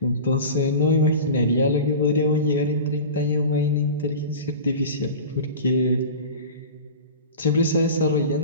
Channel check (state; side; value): inverted; both; correlation -0.33